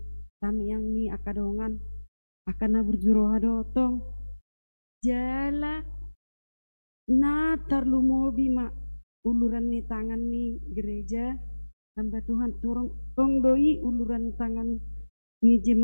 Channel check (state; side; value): inverted; both; correlation -1.00